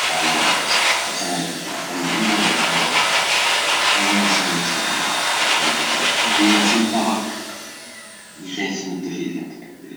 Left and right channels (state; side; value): identical; both; correlation 1.00